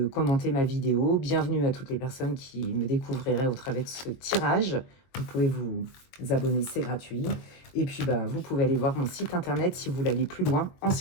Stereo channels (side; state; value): right; late; 22 ms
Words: commenter ma vidéo. Bienvenue à toutes les personnes qui me découvriraient au travers de ce tirage. Vous pouvez vous abonner, c'est gratuit. Et puis, bah, vous pouvez aller voir mon site internet si vous voulez aller plus loin en